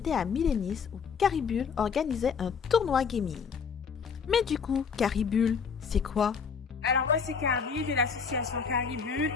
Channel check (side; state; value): right; quieter; 6.1 dB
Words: à Milenis où Caribule organisait un tournoi gaming. Mais du coup, Caribule, c'est quoi? Alors moi c'est Carrie de l'association Caribule.